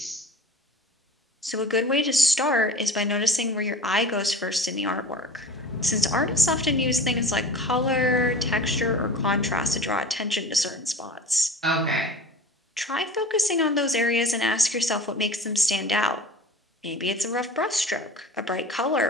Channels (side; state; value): both; normal; correlation 0.38